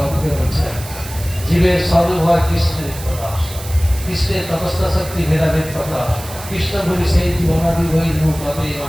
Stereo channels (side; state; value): right; noise; hiss, 14 dB below the sound